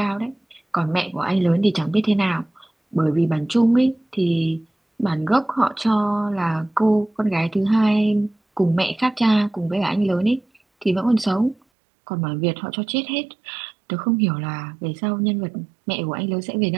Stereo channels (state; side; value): drops out; left; at 11.6 s